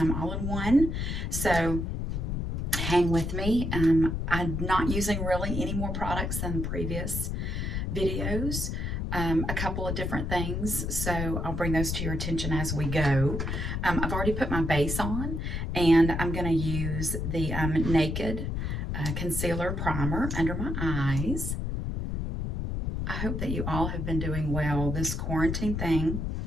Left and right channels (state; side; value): noise; left; rumble, 2 dB below the sound